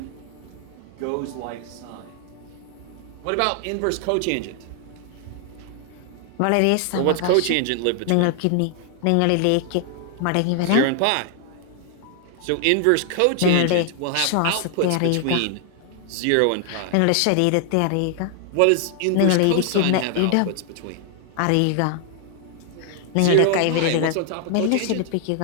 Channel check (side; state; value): both; different; correlation 0.00